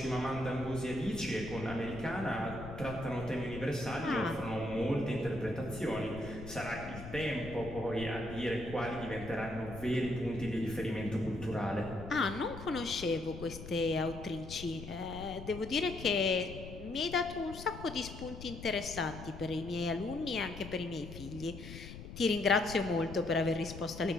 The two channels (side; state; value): left; noise; rumble, 11 dB below the sound